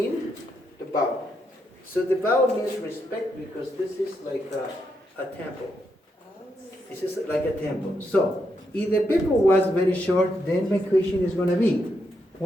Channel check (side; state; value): both; normal; correlation 0.81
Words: the bow. So the bow means respect, because this is like a temple. This is like a temple. So if the people was very short, then my question is going to be,